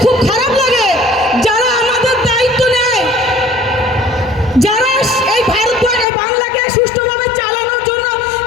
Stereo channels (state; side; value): drops out; right; at 6.1 s